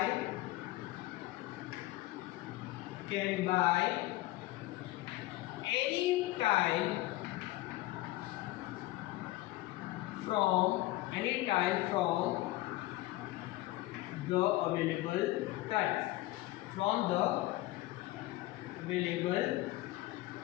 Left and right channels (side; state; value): right; quieter; 18.0 dB